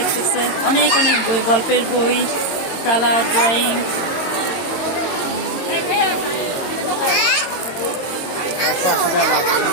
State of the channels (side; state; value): right; late; 22 ms